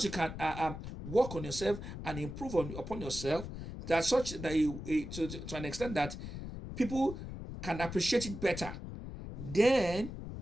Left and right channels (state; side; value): noise; left; rumble, 9 dB below the sound